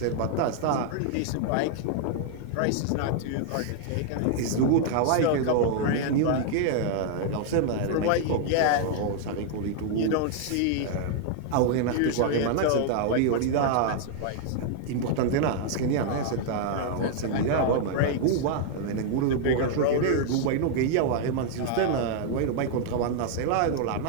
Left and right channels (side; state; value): both; different; correlation -0.01